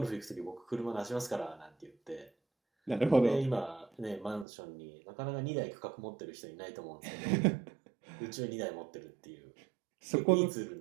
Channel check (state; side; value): drops out; left; at 4.5 s